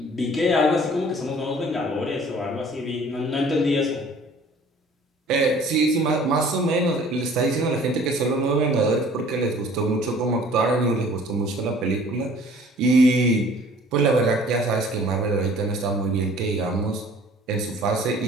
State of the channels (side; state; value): both; normal; correlation 0.52